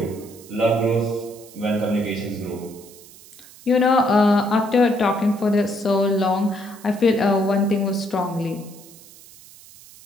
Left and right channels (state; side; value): noise; right; hiss, 21 dB below the sound